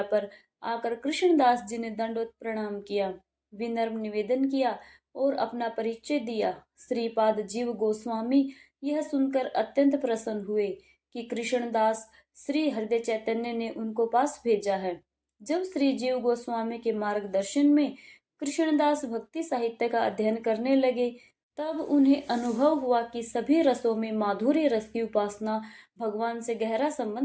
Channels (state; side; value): identical; both; correlation 1.00